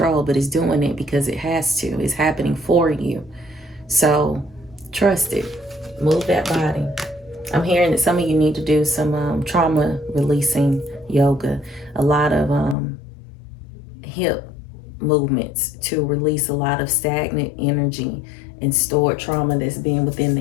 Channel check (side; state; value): right; drops out; at 12.8 s